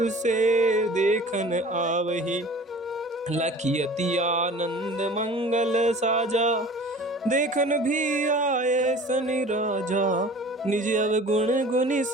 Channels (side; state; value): both; normal; correlation 0.44